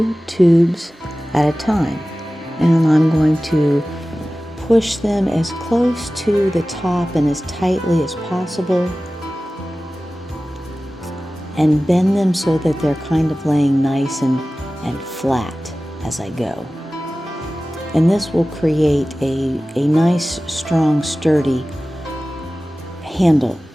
tubes at a time. And I'm going to push them as close to the top and as tightly as possible and bend them so that they're kind of laying nice and flat as I go. And this will create a nice, strong, sturdy handle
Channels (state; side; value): normal; both; correlation 0.96